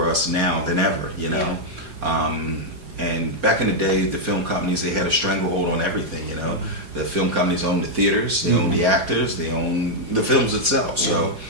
us now than ever, you know. And back in the day, the film companies, they had a stranglehold on everything, you know. The film companies owned the theaters, they owned the actors, they owned the films itself. So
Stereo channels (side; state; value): left; late; 4.8 ms